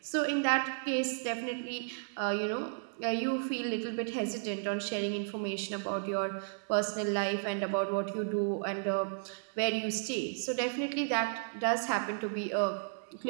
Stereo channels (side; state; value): left; silent; digital silence